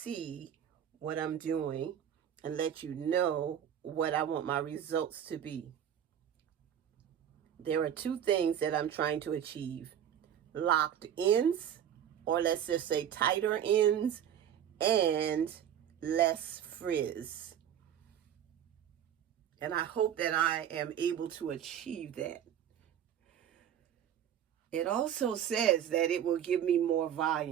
what I'm doing and let you know what I want my results to be. There are 2 things that I'm trying to achieve: locked ends, or let's just say tighter ends, and less frizz. And I hope that I am able to achieve that. It also says that it will give me more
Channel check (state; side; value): quieter; left; 9.7 dB